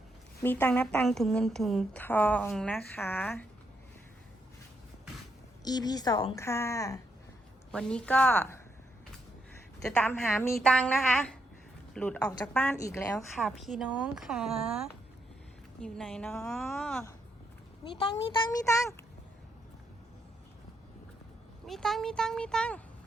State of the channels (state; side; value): normal; both; correlation 0.78